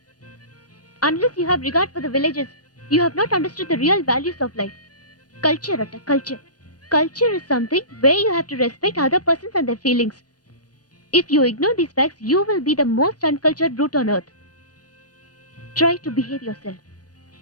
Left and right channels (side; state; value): right; late; 0.69 ms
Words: Unless you have regard for the villages, you have not understood the real values of life. Culture atta culture. Culture is something where you have to respect other persons and their feelings. If you ignore these facts, you will be the most uncultured brute on earth. Try to behave yourself.